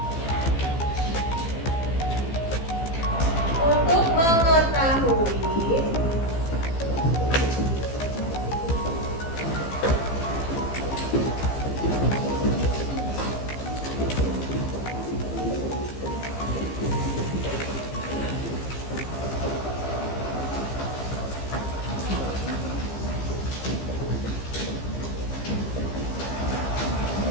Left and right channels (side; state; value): right; late; 15 ms